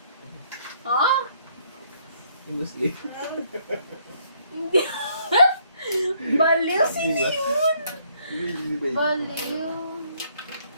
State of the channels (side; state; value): both; inverted; correlation -0.67